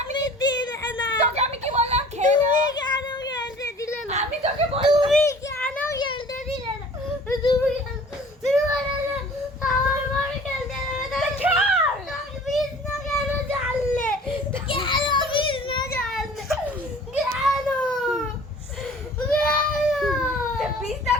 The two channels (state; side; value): normal; both; correlation 0.47